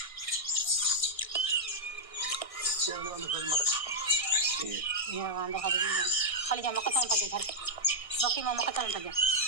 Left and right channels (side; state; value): right; late; 1.6 ms